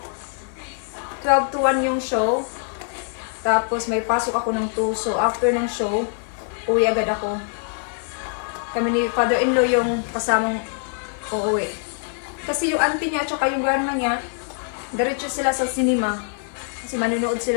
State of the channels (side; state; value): right; silent; 56 dB below the other